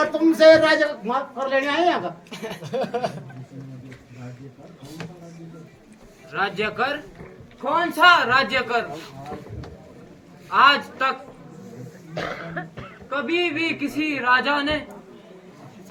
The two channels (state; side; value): identical; both; correlation 1.00